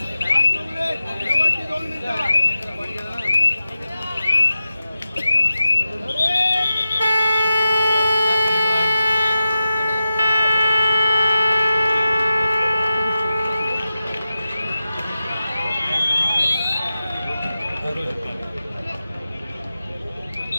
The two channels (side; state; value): both; inverted; correlation -0.92